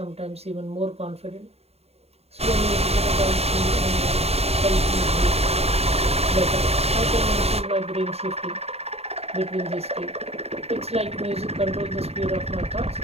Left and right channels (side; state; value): left; late; 0.30 ms